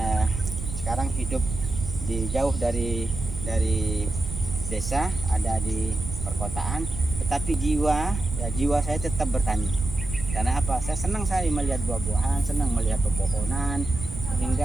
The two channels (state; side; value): noise; right; rumble, 6 dB below the sound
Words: sekarang hidup jauh dari desa, ada di perkotaan, tetapi jiwa saya tetap bertani. Karena apa? Saya senang sekali melihat buah-buahan, senang melihat pepohonan,